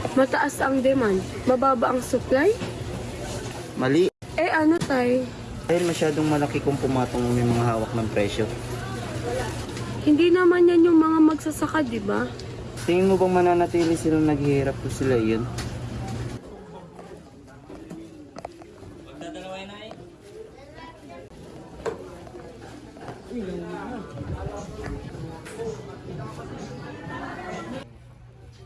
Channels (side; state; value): both; identical; correlation 1.00